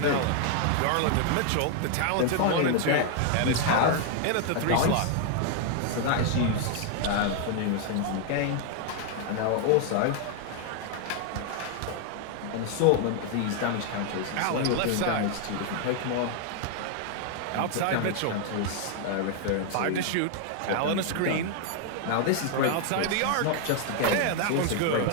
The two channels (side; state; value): both; different; correlation 0.00